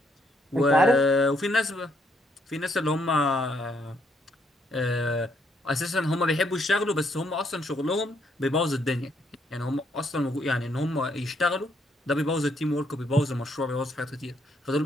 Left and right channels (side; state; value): both; normal; correlation 0.72